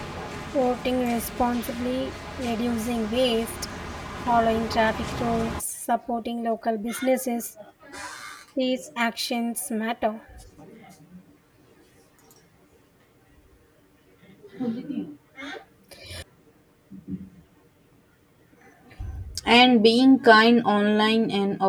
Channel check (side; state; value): both; identical; correlation 1.00